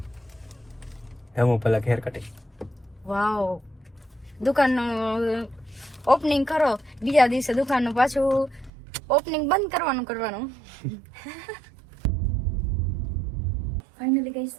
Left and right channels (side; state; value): left; drops out; at 8.7 s